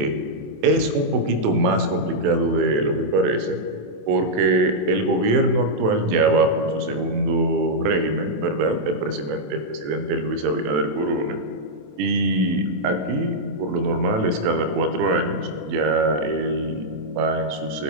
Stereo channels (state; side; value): late; left; 27 ms